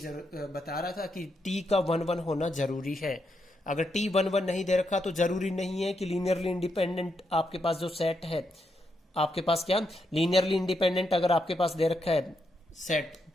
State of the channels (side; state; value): both; normal; correlation 0.81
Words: रहा था कि T का 1, 1 होना जरूरी है। अगर T 1, 1 नहीं दे रखा तो जरूरी नहीं है कि लीनियरली इंडिपेंडेंट आपके पास जो सेट है, आपके पास क्या लीनियरली इंडिपेंडेंट अगर आपके पास दे रखा है सेट,